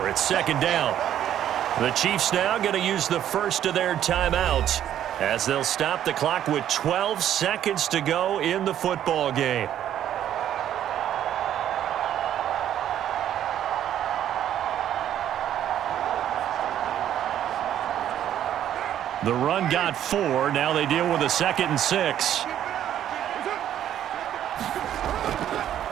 It's 2nd down. The Chiefs now going to use the first of their timeouts as they'll stop the clock with 12 seconds to go in the football game. The run got 4. Now they deal with a 2nd and 6.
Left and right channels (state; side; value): quieter; left; 10.9 dB